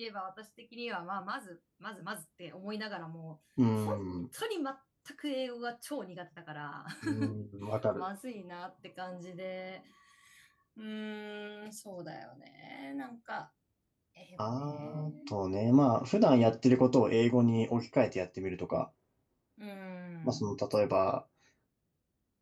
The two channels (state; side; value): identical; both; correlation 1.00